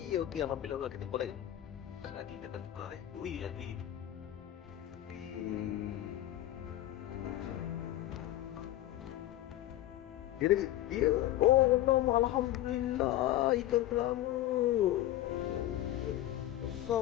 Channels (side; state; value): right; quieter; 14.0 dB